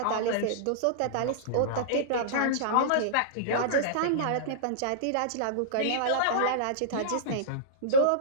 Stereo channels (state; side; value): different; both; correlation -0.03